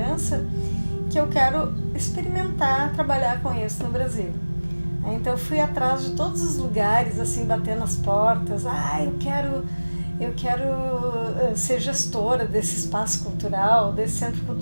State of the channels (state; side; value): inverted; both; correlation -1.00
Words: que eu quero experimentar trabalhar com isso no Brasil. Então eu fui atrás de todos os lugares, assim, batendo as portas. Eu quero ser gestora desse espaço cultural, desse centro